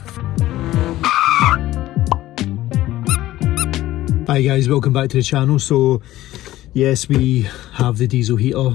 Hi guys, welcome back to the channel. So yes, we have the diesel heater,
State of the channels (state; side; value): quieter; right; 15.4 dB